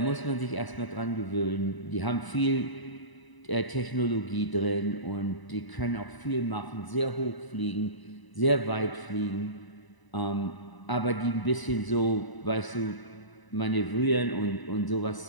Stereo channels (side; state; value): right; late; 1.0 ms